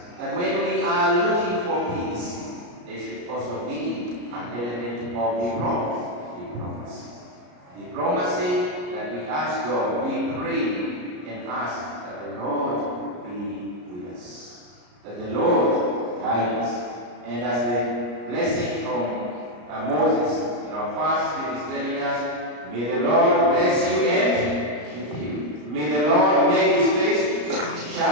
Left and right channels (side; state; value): left; late; 34 ms